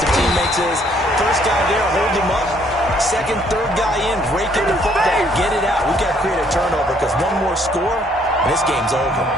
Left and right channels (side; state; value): both; normal; correlation 0.65